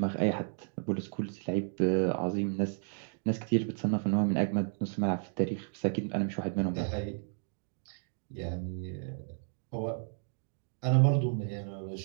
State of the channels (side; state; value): left; silent; digital silence